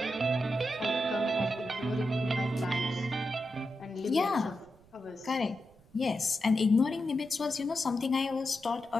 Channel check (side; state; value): right; noise; rumble, 28 dB below the sound